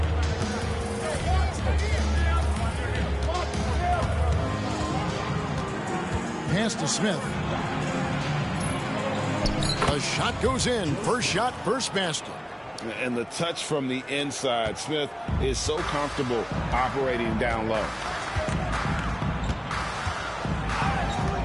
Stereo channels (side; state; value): both; identical; correlation 1.00